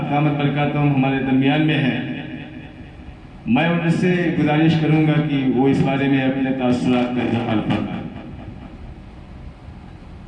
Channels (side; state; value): both; identical; correlation 1.00